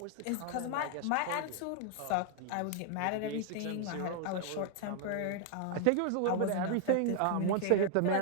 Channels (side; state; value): both; different; correlation 0.00